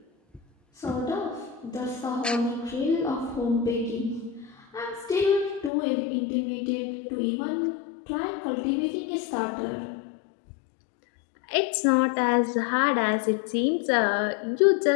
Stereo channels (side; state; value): right; drops out; at 5.7 s